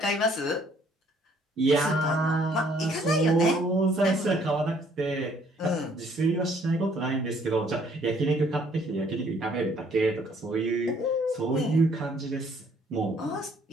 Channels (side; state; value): both; normal; correlation 0.63